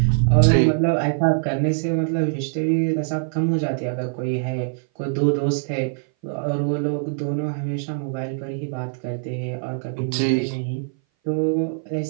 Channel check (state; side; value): silent; left; 59 dB below the other